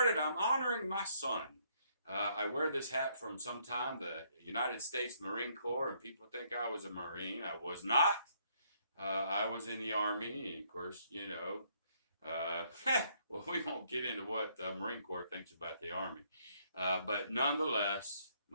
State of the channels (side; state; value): both; inverted; correlation -0.69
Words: I'm honoring my son. I wear this hat from some time, the United States Marine Corps, and people think I was a Marine. I was not. I was in the Army, and of course, well, we won't get into what the Marine Corps thinks about the Army. But nonetheless,